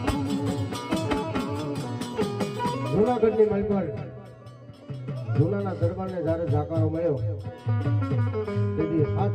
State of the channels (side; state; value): both; identical; correlation 1.00